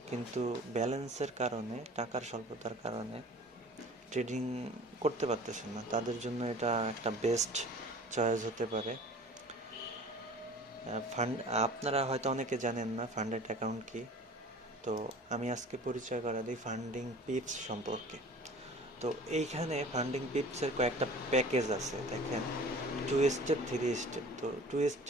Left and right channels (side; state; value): both; normal; correlation 0.44